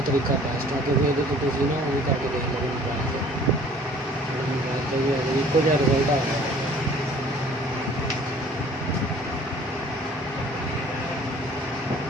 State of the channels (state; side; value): normal; both; correlation 0.52